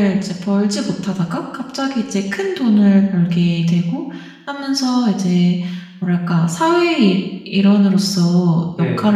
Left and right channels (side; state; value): both; identical; correlation 1.00